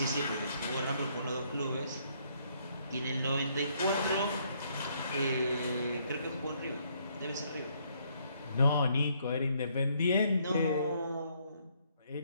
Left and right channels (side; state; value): both; inverted; correlation -0.69